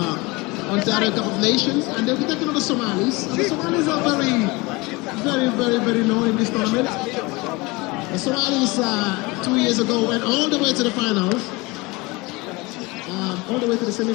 Ontario Cup of Nations, and they'll be taking on the Somalis. And the Somalis are very known in this tournament. The Somalis 2 years ago went all the way to the finals, all the way to the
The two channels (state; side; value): quieter; right; 24.0 dB